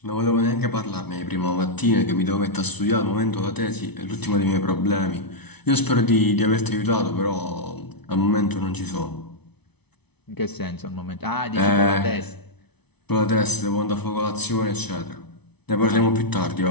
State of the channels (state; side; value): late; right; 0.99 ms